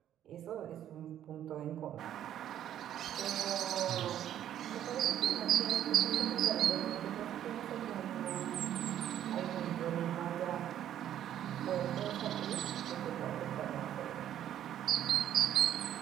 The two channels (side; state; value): left; quieter; 11.0 dB